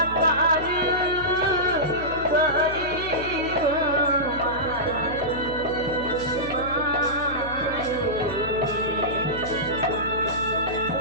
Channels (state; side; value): noise; left; hum, 12 dB below the sound